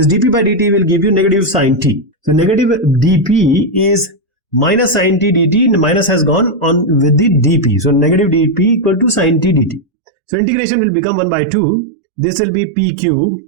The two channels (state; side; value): drops out; left; at 9.9 s